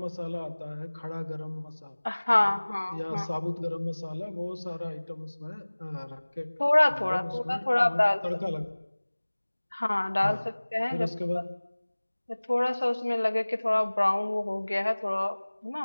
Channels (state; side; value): inverted; both; correlation -1.00